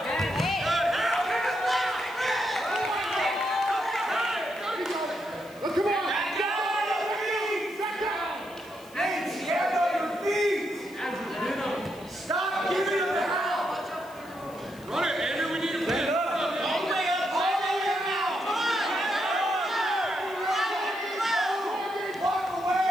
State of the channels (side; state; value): left; noise; hiss, 24 dB below the sound